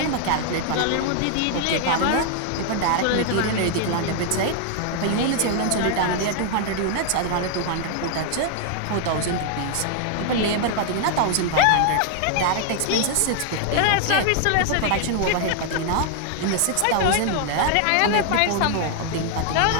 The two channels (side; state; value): both; different; correlation 0.00